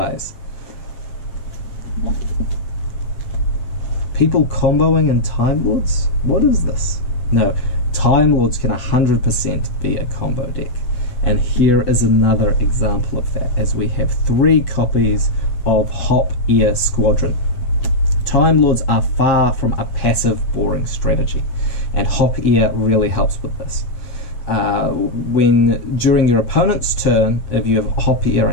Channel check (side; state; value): right; late; 8.1 ms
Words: People comboing in Time Lords? What is this? No, Time Lords can 100% be a combo deck. And here is another example of that, as we have 3 copies of Hop Ear Squadron. Time Lords are far from a passive, boring strategy, and Hop Ear really helps with this. When during your opponent's turn, if you have Hop Ear